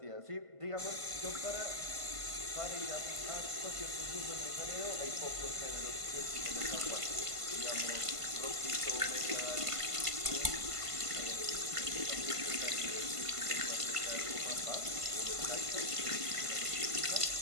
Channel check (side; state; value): left; late; 1.5 ms